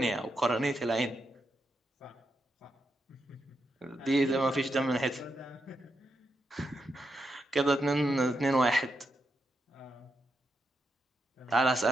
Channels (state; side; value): normal; both; correlation 0.84